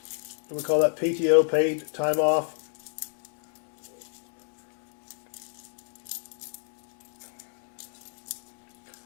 We call that PTO, paid time off.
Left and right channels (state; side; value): silent; right; 58 dB below the other